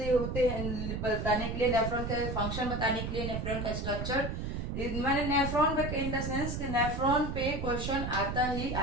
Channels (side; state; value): right; noise; rumble, 3 dB below the sound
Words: होते हैं बताने के लिए, नेफ्रॉन का फंक्शन बताने के लिए, नेफ्रॉन का स्ट्रक्चर। मैंने नेफ्रॉन पे इन द सेंस कि नेफ्रॉन पे क्वेश्चन आता ही